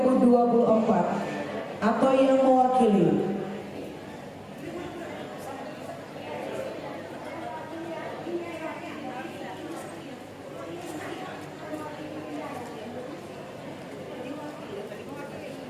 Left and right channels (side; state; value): both; identical; correlation 1.00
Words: atau yang mewakili.